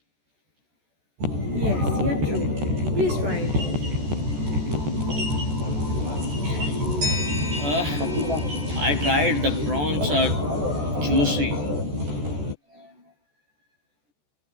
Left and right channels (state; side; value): late; left; 14 ms